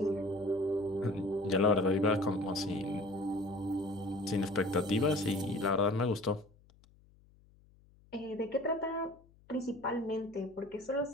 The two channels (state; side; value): noise; left; hum, 28 dB below the sound